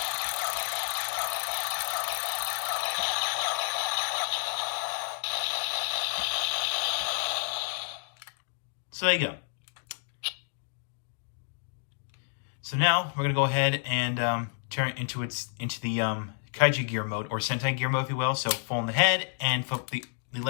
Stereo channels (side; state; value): right; silent; digital silence